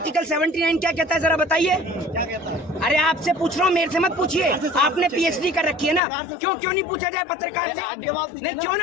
79 क्या कहता है जरा बताइए। अरे आपसे पूछ रहा हूँ, मेरे से मत पूछिए। आपने पीएचडी कर रखी है ना, क्यों नहीं पूछा जाए पत्रकार से? नहीं क्यों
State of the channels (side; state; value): right; drops out; at 6.0 s